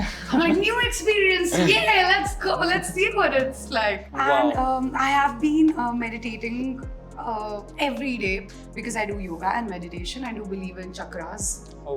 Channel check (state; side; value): identical; both; correlation 1.00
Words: I'm like, new experience, yeah, let's go, let's see what it's like. Wow. And I have been meditating every day because I do yoga and meditation. I do believe in chakras, Oh,